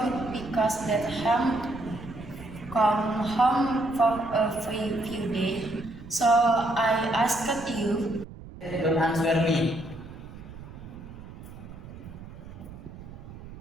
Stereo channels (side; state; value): right; noise; rumble, 15 dB below the sound